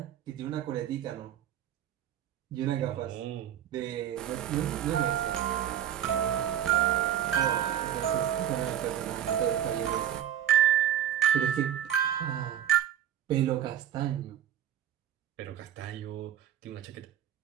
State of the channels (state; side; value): quieter; left; 10.7 dB